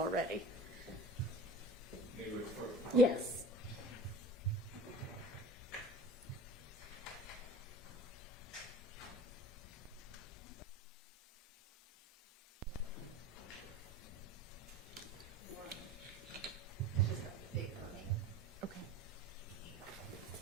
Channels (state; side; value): normal; both; correlation 0.39